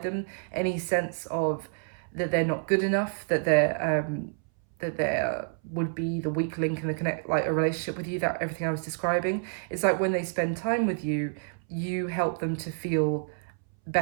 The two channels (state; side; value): silent; left; 59 dB below the other